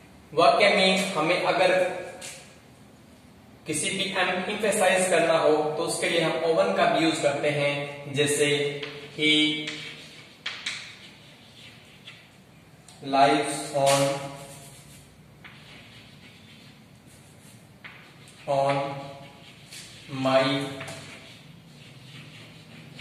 वाक्य में हमें अगर किसी भी एम्फेसाइज करना हो तो उसके लिए हम ओवन का भी यूज करते हैं। जैसे ही lives on my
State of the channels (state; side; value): identical; both; correlation 1.00